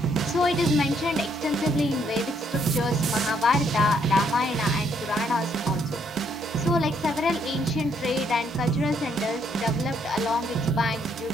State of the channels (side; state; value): both; normal; correlation 0.71